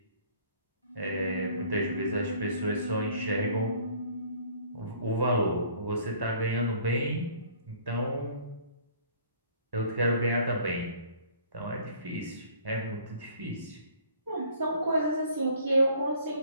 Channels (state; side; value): inverted; both; correlation -0.54